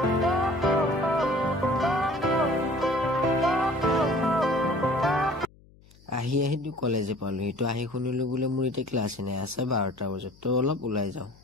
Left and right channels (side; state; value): left; noise; hum, 27 dB below the sound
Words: আহি দু কলেজে পালো এটো আহি শুনিলো বুলে মোৰ এতে ক্লাছ নাই আছে 12টা বজাত তো অলপ উলাই যাও